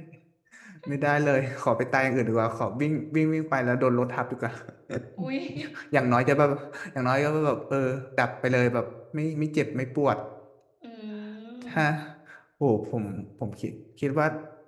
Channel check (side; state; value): both; identical; correlation 1.00